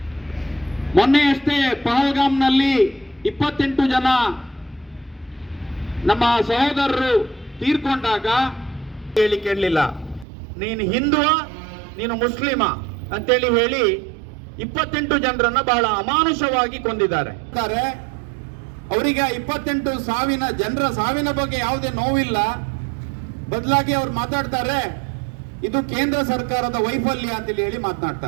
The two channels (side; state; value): left; drops out; at 10.2 s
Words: ಮೊನ್ನೆಯಷ್ಟೇ ಪಹಲ್ಗಾಮ್ನಲ್ಲಿ 28 ಜನ ನಮ್ಮ ಸಹೋದರರು ತೀರ್ಕೊಂಡಾಗ ಹೇಳಿ ಕೇಳಲಿಲ್ಲ, ನೀನು ಹಿಂದುವ ನೀನು ಮುಸ್ಲಿಮ ಅಂತೇಳಿ ಹೇಳಿ 28 ಜನರನ್ನ ಬಹಳ ಅಮಾನುಷವಾಗಿ ಕೊಂದಿದ್ದಾರೆ. ಅವರಿಗೆ 28 ಜನರ ಸಾವಿನ ಬಗ್ಗೆ ಯಾವುದೇ ನೋವಿಲ್ಲ. ಬದಲಾಗಿ ಅವ್ರು ಮಾತಾಡ್ತಾರೆ ಇದು ಕೇಂದ್ರ ಸರ್ಕಾರದ ವೈಫಲ್ಯ ಅಂತೇಳಿ ಹೇಳಿ